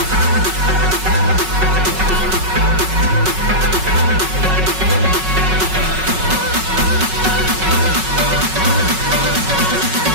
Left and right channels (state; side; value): late; left; 5.4 ms